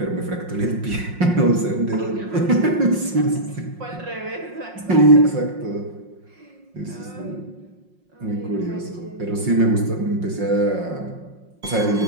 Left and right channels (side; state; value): left; late; 5.6 ms